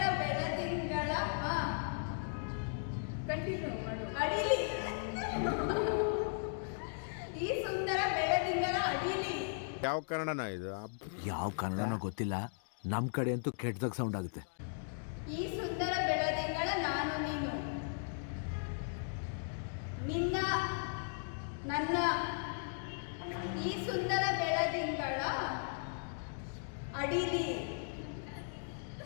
ಬೆಳದಿಂಗಳ ಕಂಟಿನ್ಯೂ ಮಾಡು. ಅಡಿಲಿ ಈ ಸುಂದರ ಬೆಳದಿಂಗಳ ಅಡಿಲಿ ಯಾವ ಕನ್ನಡನ ಇದು? ಯಾವ ಕನ್ನಡನೋ ಗೊತ್ತಿಲ್ಲ, ನಮ್ಮ ಕಡೆ ಅಂತೂ ಕೆಟ್ಟದಾಗ ಸೌಂಡ್ ಆಗುತ್ತೆ. ಈ ಸುಂದರ ಬೆಳದಿಂಗಳ ನಾನು ನೀನು ನಿನ್ನ ನನ್ನ ಈ ಸುಂದರ ಬೆಳದಿಂಗಳ ಅಡಿಲಿ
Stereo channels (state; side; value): silent; right; digital silence